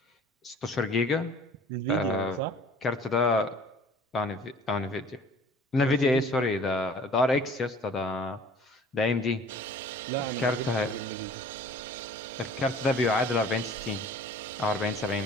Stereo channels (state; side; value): normal; both; correlation 0.48